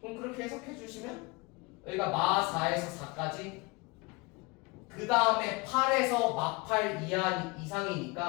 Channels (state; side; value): quieter; right; 26.1 dB